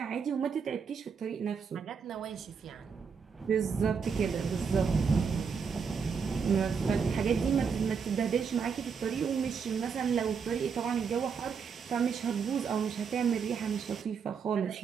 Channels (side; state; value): left; quieter; 6.1 dB